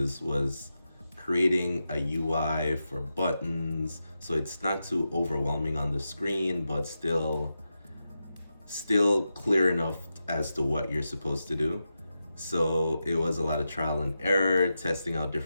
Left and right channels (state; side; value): inverted; both; correlation -0.89